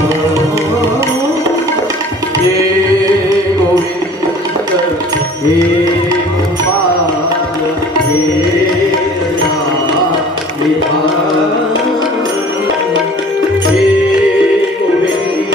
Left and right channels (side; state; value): both; normal; correlation 0.48